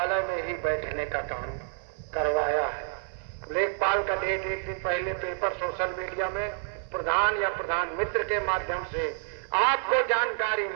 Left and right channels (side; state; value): left; silent; 59 dB below the other